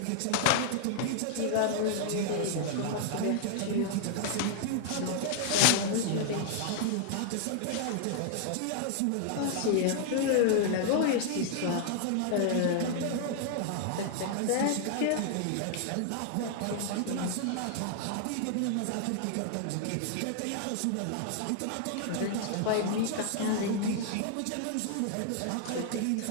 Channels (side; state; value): both; different; correlation 0.00